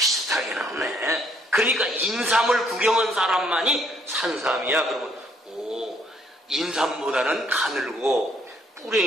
나오네. 그러니까 인삼을 구경한 사람만이 산삼이야. 그러면 인삼보다는 가늘고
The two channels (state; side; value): normal; both; correlation 0.67